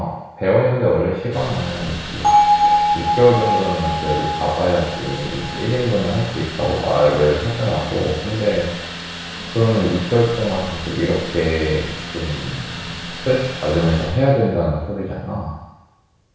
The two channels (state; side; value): identical; both; correlation 1.00